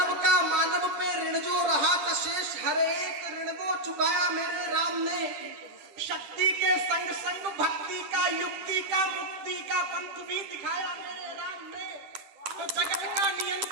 का मानव पे ऋण जो रहा था शेष, हर एक ऋण वो चुकाया मेरे राम ने। शक्ति के संग संग भक्ति का युक्ति का मुक्ति का पंथ भी दिखाया मेरे राम ने। तो जगत का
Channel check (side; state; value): left; late; 10 ms